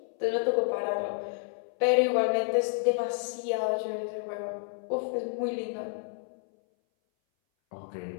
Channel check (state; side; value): silent; right; 58 dB below the other